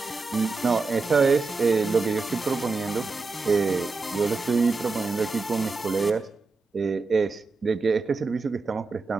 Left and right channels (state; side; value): quieter; left; 4.0 dB